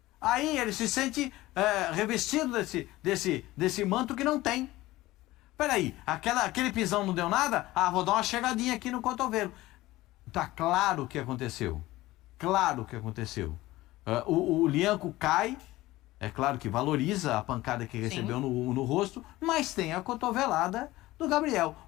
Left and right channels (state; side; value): quieter; right; 17.9 dB